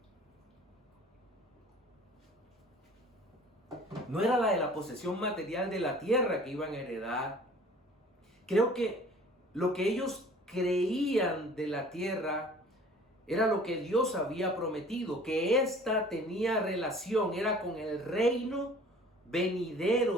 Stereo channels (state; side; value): normal; both; correlation 0.49